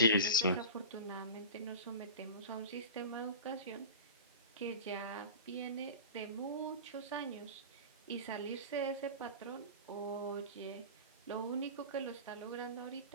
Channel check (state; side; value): inverted; both; correlation -0.31